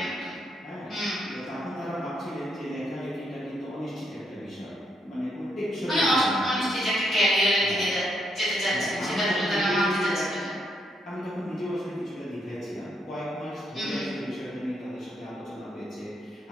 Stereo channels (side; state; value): both; normal; correlation 0.77